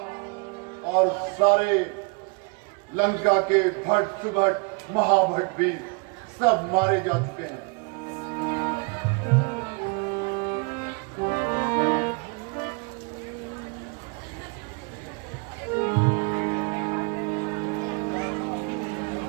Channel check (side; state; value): left; quieter; 32.0 dB